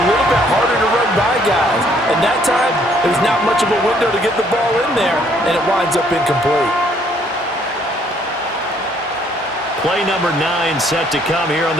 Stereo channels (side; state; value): both; normal; correlation 0.65